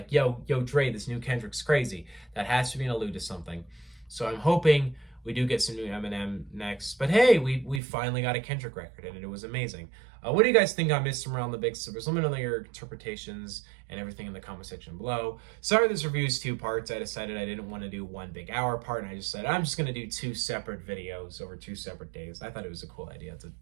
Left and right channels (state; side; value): drops out; left; at 7.8 s